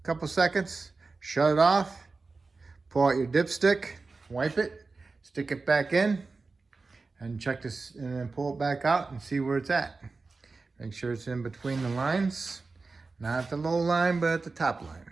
couple seconds. Shut it off. Pull out your dipstick, wipe it, stick it back in, and check this, and then pull it back out and see where it's at. Make sure it's in between the lines. Not at the low line, but at the top line.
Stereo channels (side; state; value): left; quieter; 4.0 dB